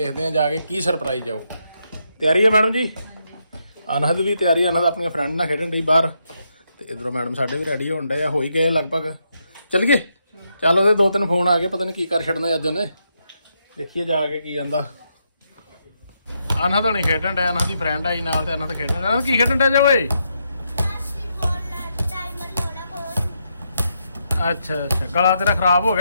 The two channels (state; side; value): inverted; both; correlation -0.80